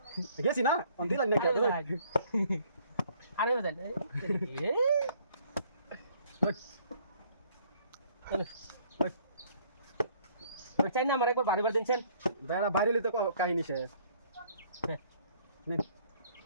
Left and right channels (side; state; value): both; inverted; correlation -0.61